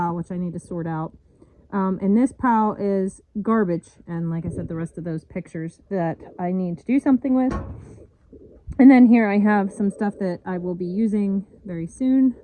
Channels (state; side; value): identical; both; correlation 1.00